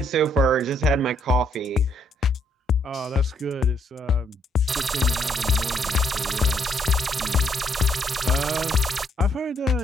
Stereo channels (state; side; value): normal; both; correlation 0.71